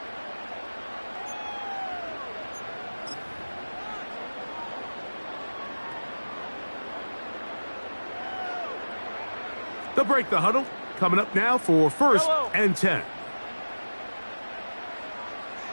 They'll break the huddle. Coming up now for 1st and 10.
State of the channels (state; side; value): inverted; both; correlation -1.00